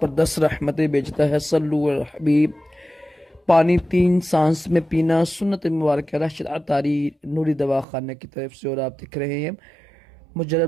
पर 10 रहमतें भेजता है। सल्लु अल हबीब। पानी 3 सांस में पीना सुन्नत मुबारक है। राशिद अतारी नूरी दवा खाने की तरफ से। और आप दिख रहे हैं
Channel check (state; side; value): drops out; left; at 7.9 s